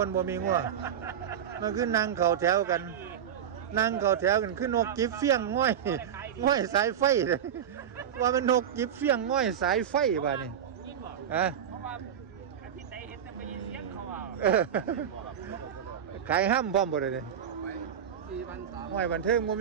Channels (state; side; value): quieter; left; 9.0 dB